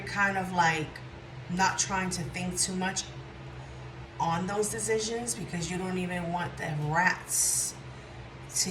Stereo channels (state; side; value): identical; both; correlation 1.00